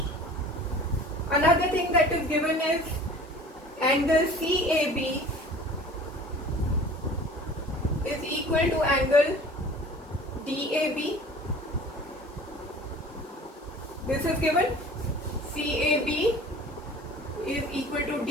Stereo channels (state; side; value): normal; both; correlation 0.44